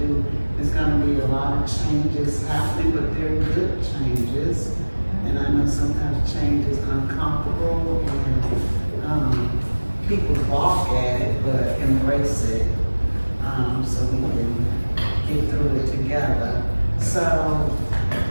there's gonna be a lot of changes happening, but they're good changes. And I know sometimes change is uncomfortable and, people balk at it, but embrace it, so we can get through it together. So,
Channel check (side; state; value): both; inverted; correlation -1.00